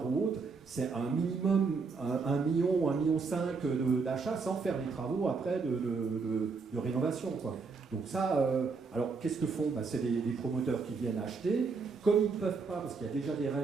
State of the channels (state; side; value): quieter; left; 4.7 dB